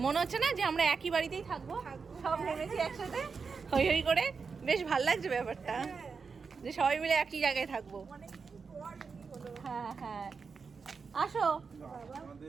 মনে হচ্ছে না যে আমরা একই বাড়িতেই থাকবো, সব নেমেছি একসাথে হই হই করে, বেশ ভাল লাগছে ব্যাপারটা যে সবাই মিলে একই জায়গায় থাকবো। হ্যাঁ হ্যাঁ, আসো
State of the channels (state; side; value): quieter; left; 5.2 dB